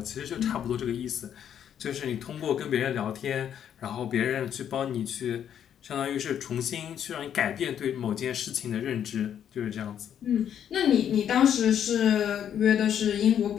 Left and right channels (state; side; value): quieter; right; 9.3 dB